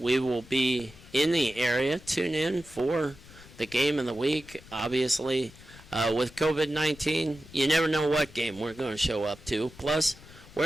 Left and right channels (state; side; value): noise; left; rumble, 21 dB below the sound